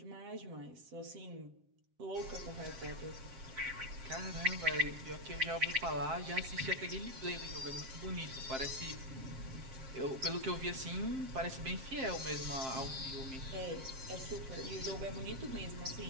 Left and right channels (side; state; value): left; late; 7.5 ms